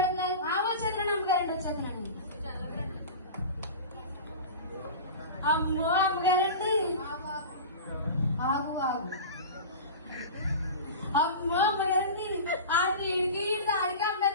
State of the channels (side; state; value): both; inverted; correlation -0.31